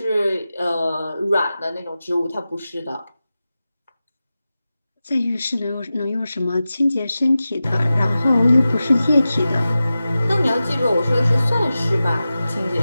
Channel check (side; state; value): both; inverted; correlation -0.94